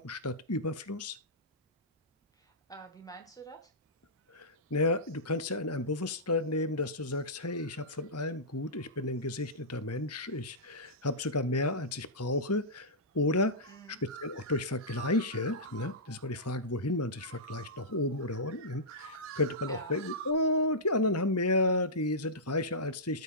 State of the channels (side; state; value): both; normal; correlation -0.14